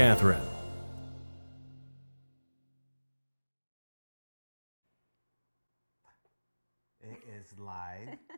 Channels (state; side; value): inverted; both; correlation -1.00